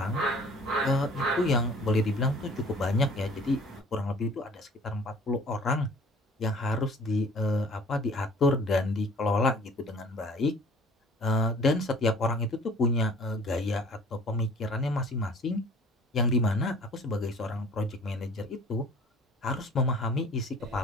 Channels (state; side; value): normal; both; correlation 0.51